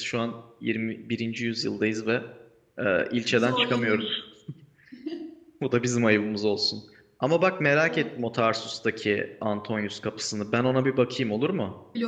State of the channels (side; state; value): both; identical; correlation 1.00